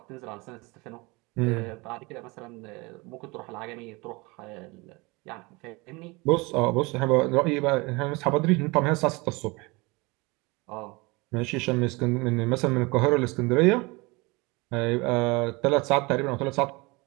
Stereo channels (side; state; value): left; quieter; 25.3 dB